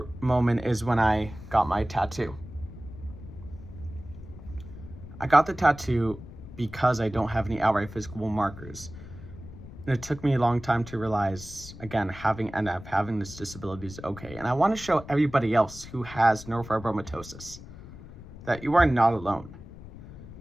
moment is when I got my tattoo. I got the tattoo because I don't have any outright physical markers. And it took me a long time to realize, again, having NF, having this disability is okay. And I want to show everybody else who has neurofibromatosis that you are not alone.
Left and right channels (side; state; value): left; noise; rumble, 15 dB below the sound